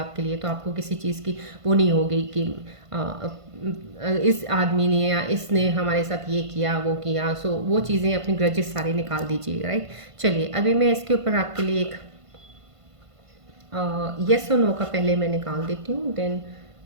लिए। तो आपको किसी चीज़ की वो नहीं होगी कि इस आदमी ने या इसने हमारे साथ ये किया वो किया, सो वो चीज़ें अपनी ग्रजेस सारी निकाल दीजिएगा, राइट। चलिए, अभी मैं इसके ऊपर आपके लिए एक येस और नो का पहले मैं निकाल देती हूँ, then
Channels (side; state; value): left; late; 1.5 ms